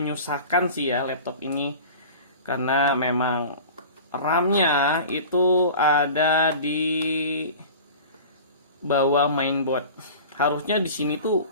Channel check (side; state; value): both; inverted; correlation -0.38